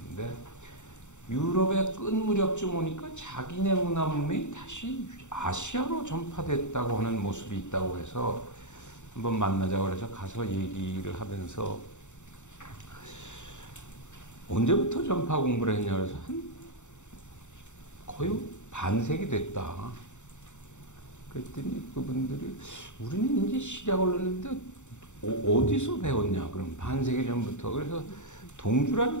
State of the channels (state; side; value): late; right; 0.84 ms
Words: 유럽의 끝 무렵쯤 오니까 자기네 문화 문명이 다시 아시아로 전파됐다고 하는 모습이 있다고 해서 한번 만나자고 해서 가서 얘기를 하면서 언제부터 전파 공부를 했냐 그래서 거의 반세기 됐다. 그랬더니 그분들이 우리는 이제 시작을 했는데 어디서 배웠냐? 그럼 반세기 전부터. 그래서